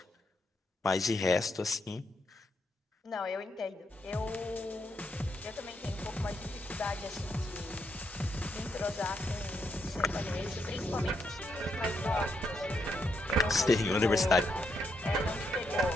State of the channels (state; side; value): normal; both; correlation 0.79